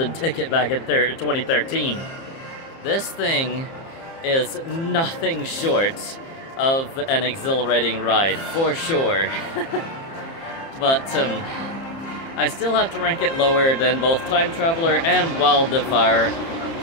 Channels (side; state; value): right; late; 30 ms